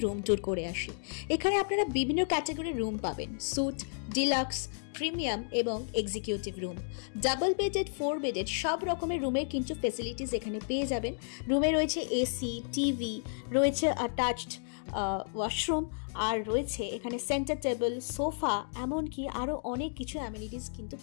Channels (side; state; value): right; silent; digital silence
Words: রুম ট্যুর করে আসি। এখানে আপনারা বিভিন্ন ক্যাটাগরির রুম পাবেন, স্যুট, ডিলাক্স, প্রিমিয়াম এবং executive room. Double bedded, 4 bedded সব রকমের রুমের কিন্তু ফেসিলিটিস এখানে পেয়ে যাবেন। রুমে রয়েছে এসি, টিভি, রয়েছে অ্যাটাচড ওয়াশরুম, আর রয়েছে এখানে সেন্টার টেবিল, সোফা, এমনকি আরও অনেক কিছু অ্যামিনিটিস কিন্তু